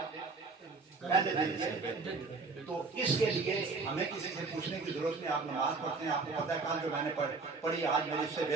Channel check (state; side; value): quieter; left; 4.1 dB